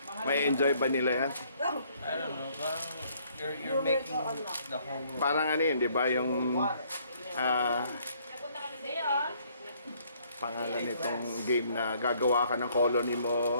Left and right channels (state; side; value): inverted; both; correlation -0.65